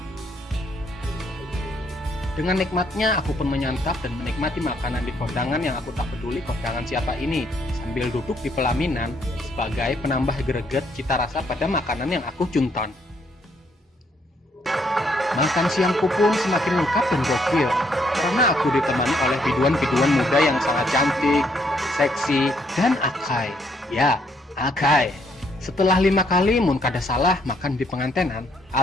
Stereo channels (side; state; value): both; normal; correlation 0.71